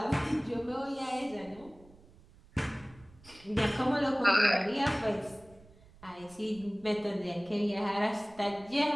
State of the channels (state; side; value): noise; right; rumble, 25 dB below the sound